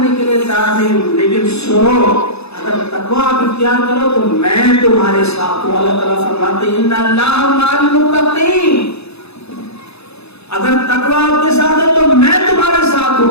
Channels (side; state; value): right; late; 0.79 ms